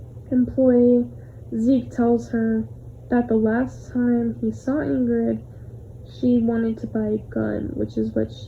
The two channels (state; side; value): identical; both; correlation 1.00